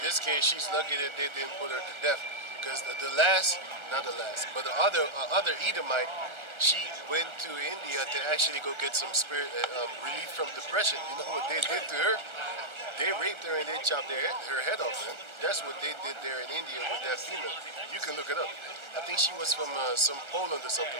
this case, she's lucky that they didn't put her to death. Because the other Edomite, she went to India to actually go get some relief from depression. You know what they did to her? They raped her and they chopped her head off, man. That's what they did there in India with that female. You can look it up. I think she was from some Poland or something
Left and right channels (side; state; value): left; late; 1.4 ms